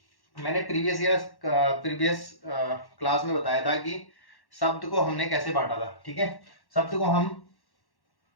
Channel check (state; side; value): late; right; 1.1 ms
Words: मैंने प्रीवियस क्लास में बताया था कि शब्द को हमने कैसे बांटा था। ठीक है, शब्द को हम